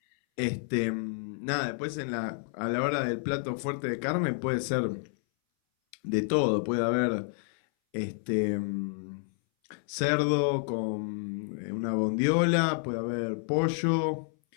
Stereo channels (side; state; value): right; silent; 58 dB below the other